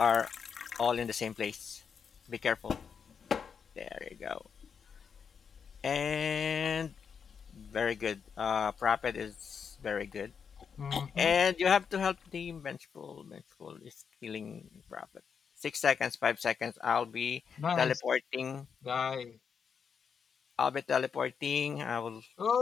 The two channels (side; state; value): right; quieter; 6.6 dB